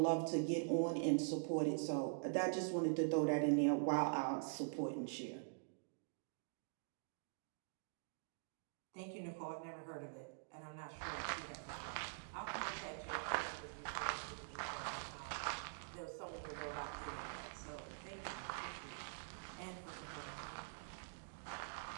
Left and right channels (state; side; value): silent; left; digital silence